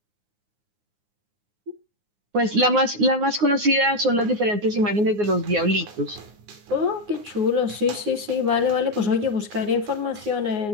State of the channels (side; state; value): left; late; 9.6 ms